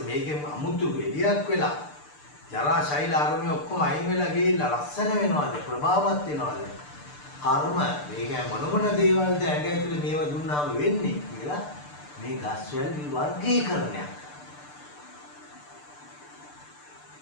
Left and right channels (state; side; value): late; right; 6.8 ms